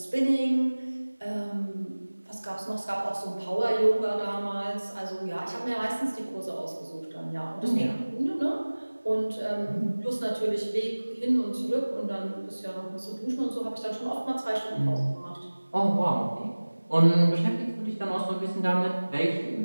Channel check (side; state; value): both; inverted; correlation -1.00